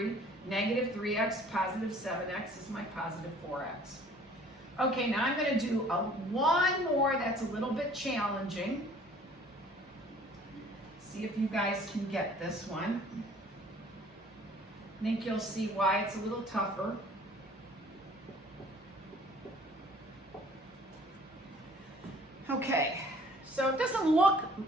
Negative 3x, positive 7x is my positive 4x. Okay, now I'm going to do one more that's a little bit challenging. See if you guys can get this one. I think you'll see why it's a little tougher. Okay, so it doesn't look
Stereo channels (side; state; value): both; normal; correlation 0.53